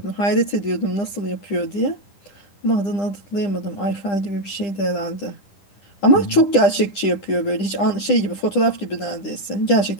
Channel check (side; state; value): right; late; 10 ms